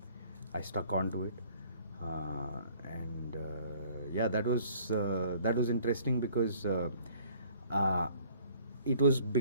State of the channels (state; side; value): inverted; both; correlation -0.56